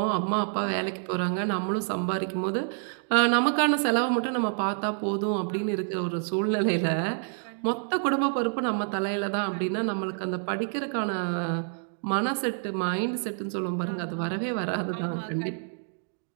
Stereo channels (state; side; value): silent; left; 59 dB below the other